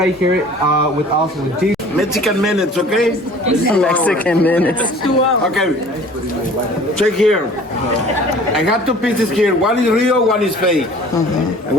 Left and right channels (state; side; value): normal; both; correlation 0.48